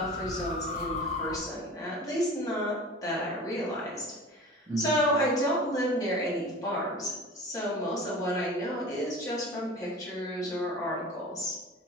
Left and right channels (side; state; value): both; normal; correlation 0.37